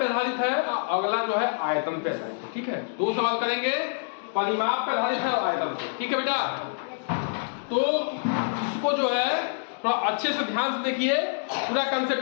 आधारित है, अगला जो है आयतन पे आधारित है। ठीक है, दो सवाल करेंगे, परिमाप पे आधारित है और आयतन पे। ठीक है बेटा, तो इसको जो है थोड़ा अच्छे से ध्यान से देखिए, पूरा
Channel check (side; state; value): right; silent; digital silence